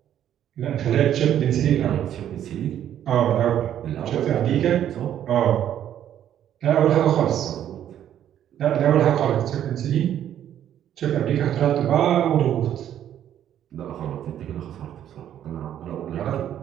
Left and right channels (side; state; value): left; quieter; 10.6 dB